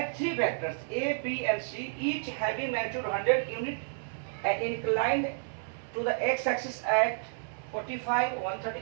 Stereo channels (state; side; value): silent; left; 57 dB below the other